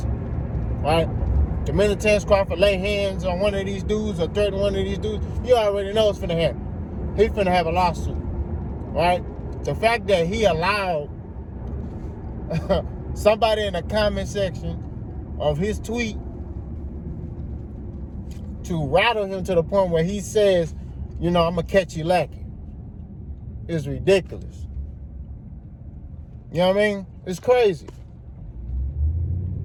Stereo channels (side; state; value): both; identical; correlation 1.00